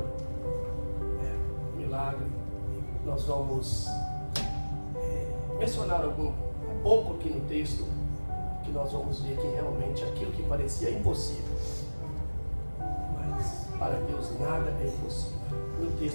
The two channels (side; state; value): both; inverted; correlation -1.00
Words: é um milagre. Nós vamos mencionar um pouco aqui no texto, que nós vamos ver que realmente aquilo que parecia impossível, mas para Deus nada é impossível. No